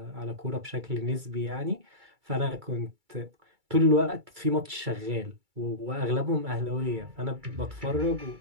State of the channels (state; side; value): late; left; 2.3 ms